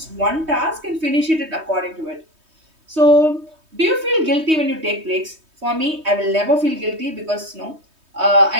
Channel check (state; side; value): late; left; 3.2 ms